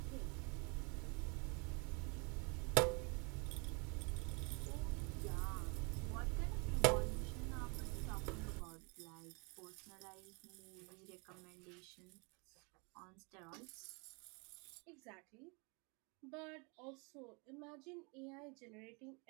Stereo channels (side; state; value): left; quieter; 32.0 dB